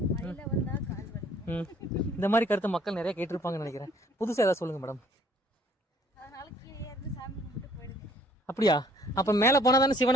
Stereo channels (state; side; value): normal; both; correlation 0.59